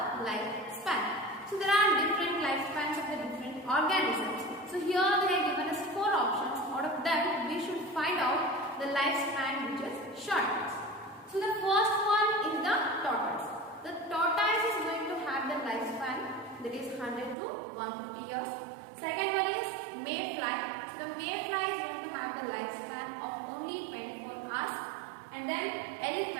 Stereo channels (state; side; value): drops out; left; at 17.4 s